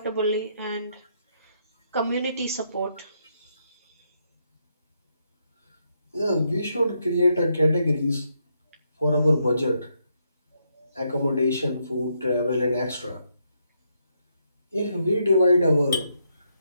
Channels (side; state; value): both; inverted; correlation -0.77